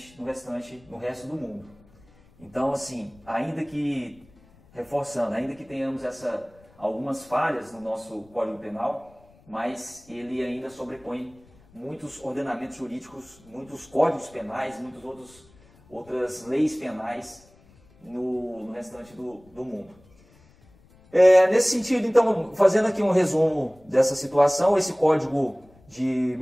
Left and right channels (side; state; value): left; noise; rumble, 28 dB below the sound